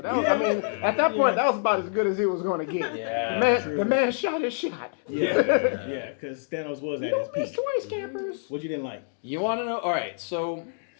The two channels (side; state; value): right; silent; digital silence